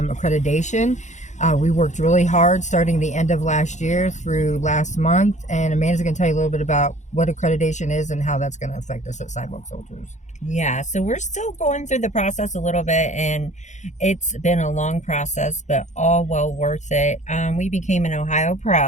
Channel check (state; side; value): late; right; 0.35 ms